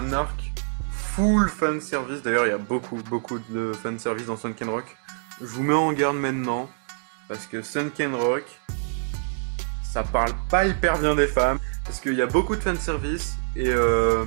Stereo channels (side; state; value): left; silent; 62 dB below the other